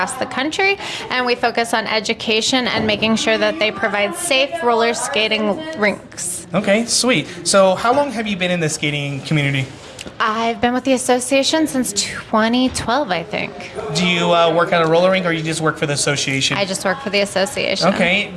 the country, and we focus on education and making sure that they provide safe roller skating rinks. Okay, sweet. So how long have you been in the skating community? I've been with the association since 2012, I think. Do you work at a roller rink or you just work for the association? I just work for the association. Okay.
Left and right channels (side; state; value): both; identical; correlation 1.00